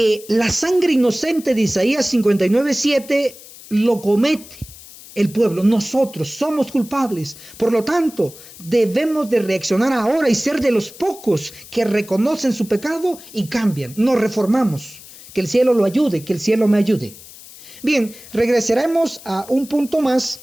la sangre inocente de Isaías 59:7 lo comete el pueblo. Nosotros somos culpables. Por lo tanto, debemos de reaccionar ahora y ser de los pocos que reconocen su pecado y cambian. Nos reformamos. Que el cielo lo ayude, que el cielo me ayude. Bien, regresaremos a un punto más.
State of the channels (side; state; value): left; noise; hiss, 19 dB below the sound